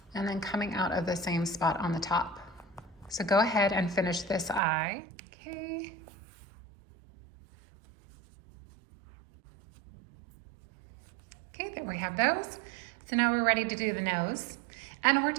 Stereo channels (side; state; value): left; drops out; at 4.6 s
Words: and then coming out of the same spot on the top. So go ahead and finish this eye. Okay. Okay, there we have those. So now we're ready to do the nose. And we're